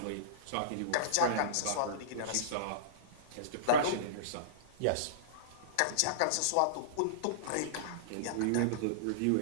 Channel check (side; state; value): both; different; correlation -0.03